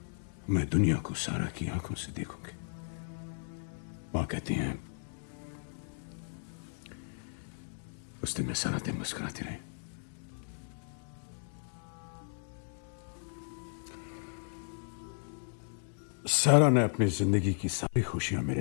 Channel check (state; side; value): silent; right; digital silence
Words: मैं दुनिया को सारा की आंखों से देखूंगी. मां कहती हैं, उस दिन मैं सारा दिन मुस्कुराती रही. सारा ने अपनी जिंदगी की सारी खुशियां